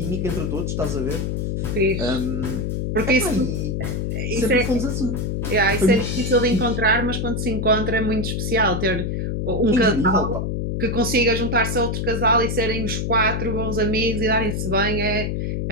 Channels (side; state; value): left; noise; hum, 1 dB below the sound